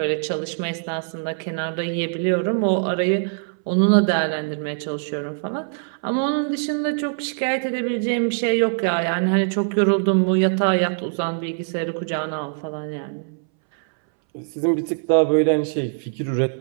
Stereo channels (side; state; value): left; silent; 64 dB below the other